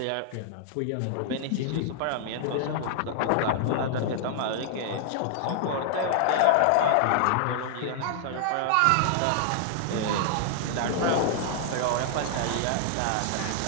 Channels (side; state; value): both; different; correlation -0.01